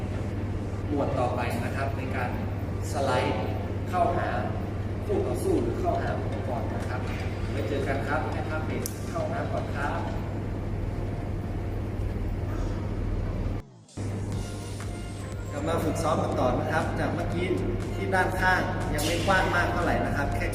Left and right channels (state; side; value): identical; both; correlation 1.00